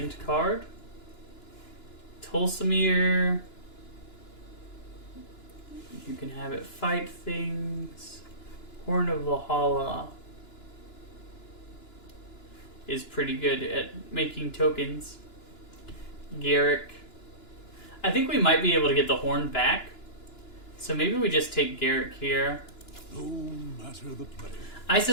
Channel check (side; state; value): right; late; 2.9 ms